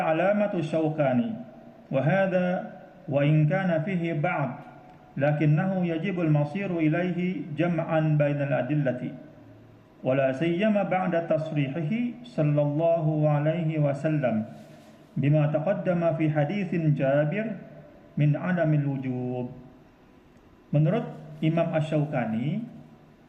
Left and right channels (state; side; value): identical; both; correlation 1.00